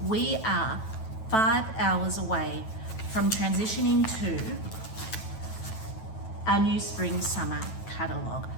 we are 5 hours away from transitioning to our new spring-summer catalogue.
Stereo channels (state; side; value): late; right; 9.1 ms